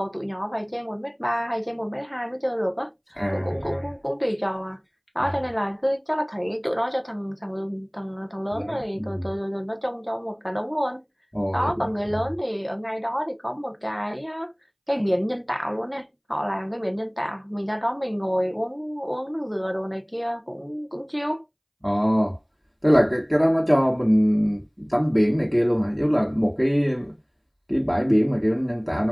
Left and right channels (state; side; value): identical; both; correlation 1.00